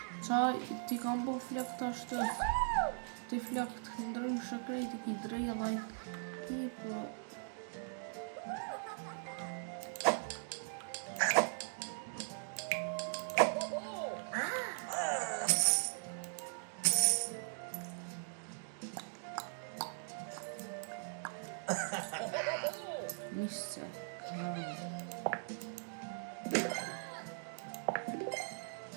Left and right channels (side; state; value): left; silent; digital silence